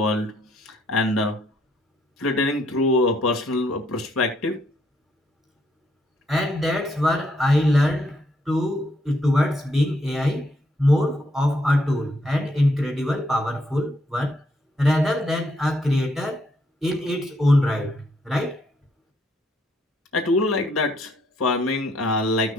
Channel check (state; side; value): normal; both; correlation 0.73